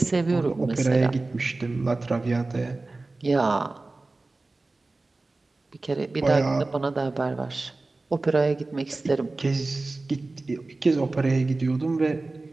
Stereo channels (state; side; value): quieter; left; 3.3 dB